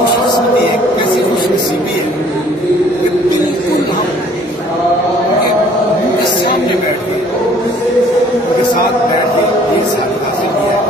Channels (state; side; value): normal; both; correlation 0.57